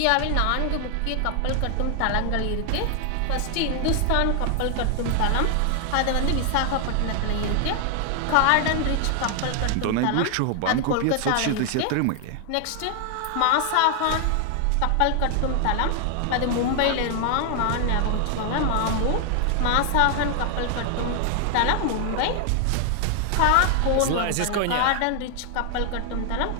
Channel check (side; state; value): both; different; correlation 0.00